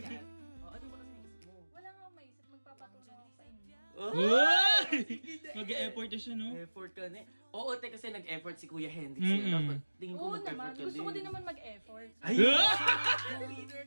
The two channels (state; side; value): inverted; both; correlation -1.00